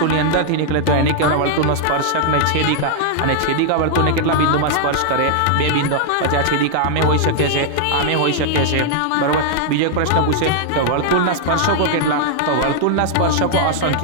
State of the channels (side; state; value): both; different; correlation -0.01